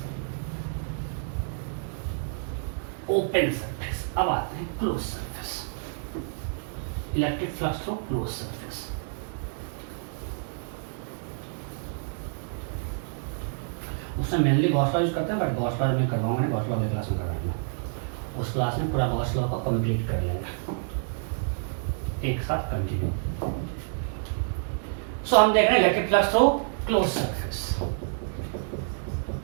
open surface. अब आते हैं close surface, electric flux through close surface. उसमें मेनली गॉस लॉ यूज करते हैं, बट गॉस लॉ में करवाऊंगा नहीं, गॉस लॉ अगली क्लास में करवाएंगे। उस क्लास में पूरा गॉस लॉ को कंप्लीट कर लेंगे एक साथ कंटिन्यू। सो हम देख रहे हैं electric flux through close surface.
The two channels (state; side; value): silent; left; digital silence